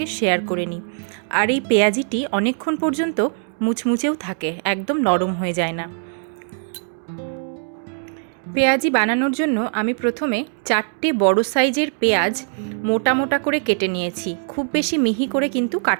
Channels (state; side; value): silent; left; 65 dB below the other